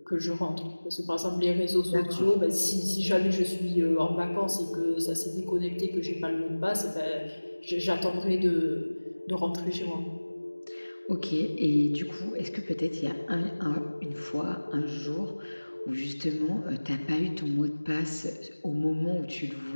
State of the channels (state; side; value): inverted; both; correlation -1.00